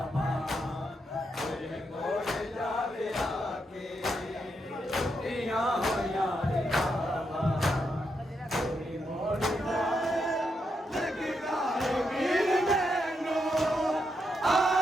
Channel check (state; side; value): normal; both; correlation 0.82